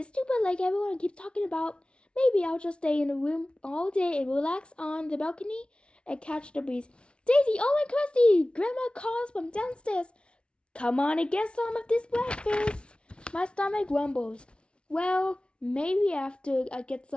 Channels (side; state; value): right; late; 0.058 ms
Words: stupid lake everyone keeps talking about. Maybe I'll just stay in the room all day and relax on the balcony and catch the breeze. Daisy, Owen, Christy! Grandma calls from downstairs. Come on and get some of this breakfast. My stomach grumbles. Well, maybe after I get